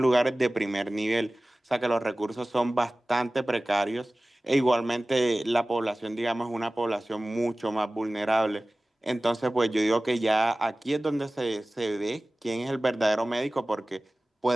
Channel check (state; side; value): normal; both; correlation 0.97